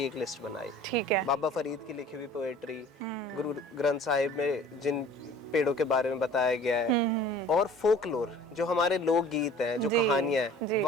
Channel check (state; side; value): normal; both; correlation 0.47